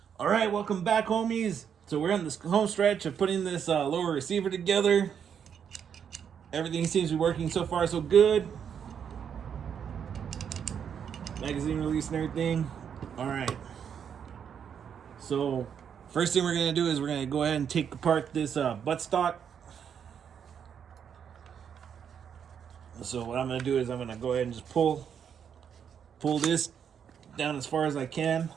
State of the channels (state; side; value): quieter; left; 7.8 dB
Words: All right, welcome back, homies. So we're on this home stretch of putting this lower receiver together. Everything seems to be working so far so good. Magazine release and everything. All right. So first thing we're gonna do is we're gonna go ahead and take apart this buttstock. So what I'm gonna do is I'm gonna go ahead and just pull this down as far as I can,